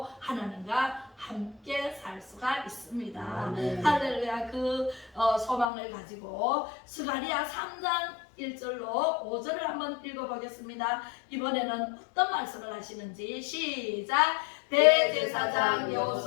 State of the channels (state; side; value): drops out; right; at 5.7 s